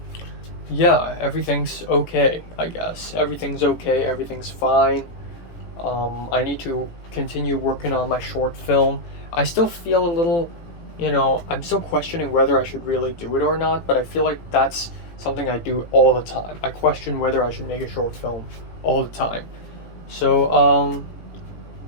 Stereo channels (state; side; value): late; right; 18 ms